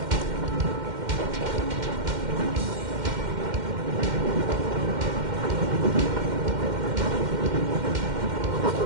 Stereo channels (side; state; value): left; late; 2.1 ms